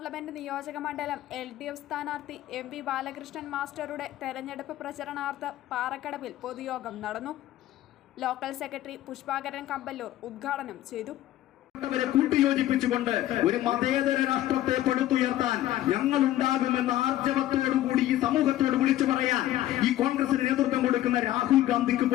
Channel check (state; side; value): quieter; right; 14.0 dB